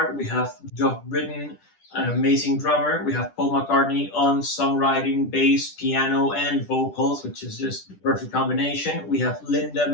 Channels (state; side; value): late; right; 10 ms